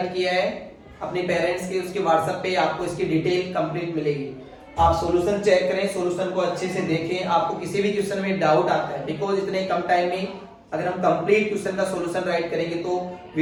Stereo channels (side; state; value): both; identical; correlation 1.00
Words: किया है अपने पेरेंट्स के, उसके व्हाट्सएप पे आपको इसकी डिटेल कंप्लीट मिलेगी। आप सॉल्यूशन चेक करें, सॉल्यूशन को अच्छे से देखें। आपको किसी भी क्वेश्चन में डाउट आता है, बिकॉज इतने कम टाइम में अगर हम कंप्लीट क्वेश्चन का सॉल्यूशन राइट करेंगे तो